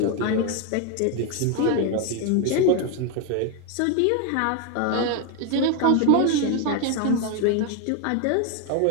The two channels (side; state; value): both; different; correlation 0.01